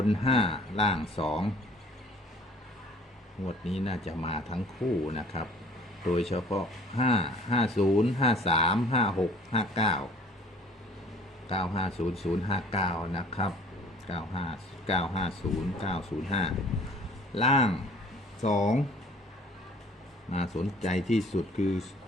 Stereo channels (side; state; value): both; normal; correlation 0.51